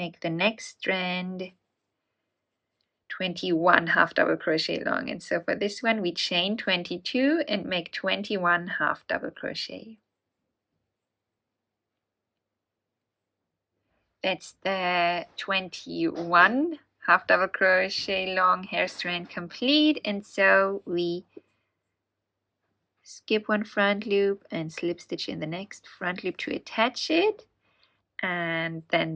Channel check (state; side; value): identical; both; correlation 1.00